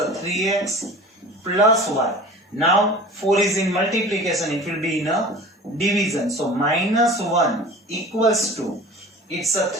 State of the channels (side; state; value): both; normal; correlation 0.40